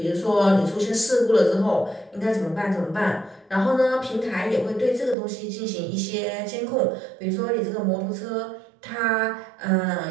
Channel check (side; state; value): left; drops out; at 5.2 s